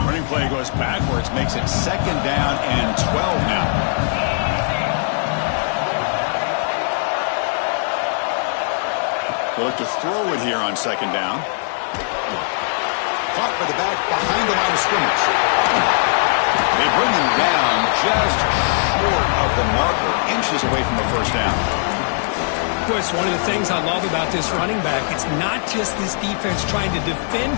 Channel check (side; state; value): right; silent; 66 dB below the other